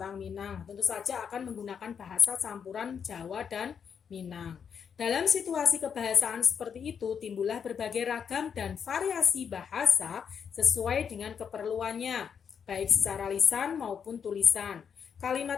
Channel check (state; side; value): quieter; right; 7.2 dB